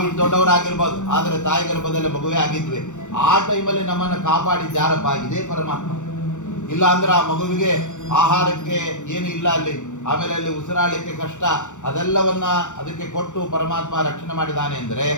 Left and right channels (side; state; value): right; late; 0.85 ms